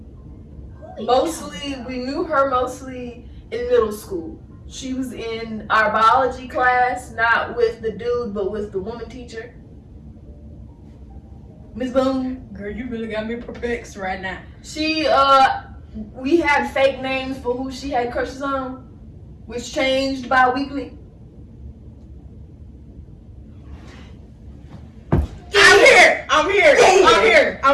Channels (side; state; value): both; identical; correlation 1.00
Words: Mostly, we knew her mostly in middle school. She was in our biology class, not with the dude, but with the woman teacher. Miss Boone. Girl, you really got me perplexed right now. She, we had fake names for who she had crushes on, which changed bi-weekly. I'm